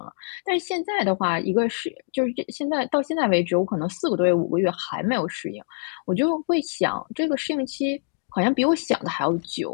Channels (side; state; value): right; silent; digital silence